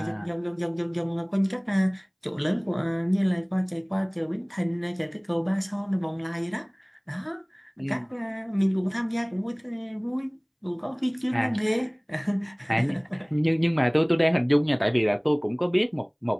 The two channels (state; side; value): identical; both; correlation 1.00